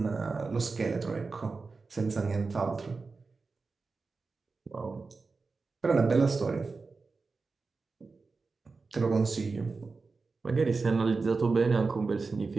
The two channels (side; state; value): left; quieter; 4.2 dB